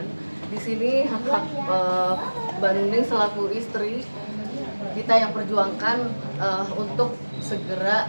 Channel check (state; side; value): inverted; both; correlation -1.00